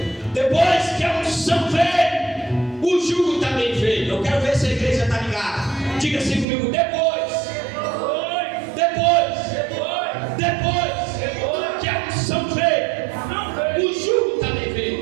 Depois que a unção veio, o jugo também veio. Eu quero ver se a igreja está ligada. Diga assim comigo, depois que a unção veio, o jugo também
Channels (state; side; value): drops out; left; at 6.5 s